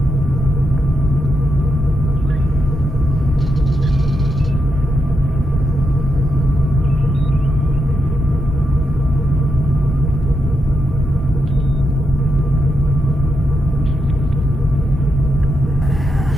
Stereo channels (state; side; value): normal; both; correlation 0.83